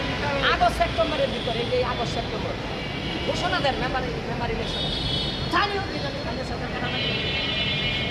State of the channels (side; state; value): both; identical; correlation 1.00